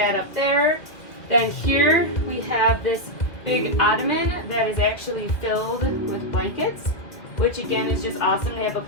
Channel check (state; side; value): late; right; 2.0 ms